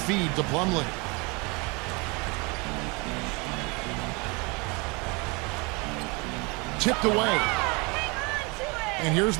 to Plumlee. Tipped away. And here's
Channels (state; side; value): quieter; left; 28.4 dB